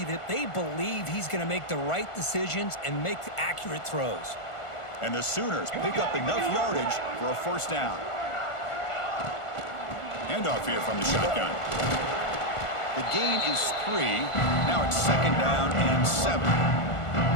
that they believe he's going to make the right decisions and make accurate throws. And the Sooners pick up enough yardage for a 1st down. Handoff here from the shotgun. The gain is 3. Now it's 2nd down and 7.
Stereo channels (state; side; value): late; right; 1.4 ms